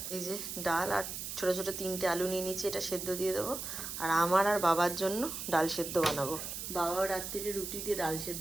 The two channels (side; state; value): right; noise; hiss, 6 dB below the sound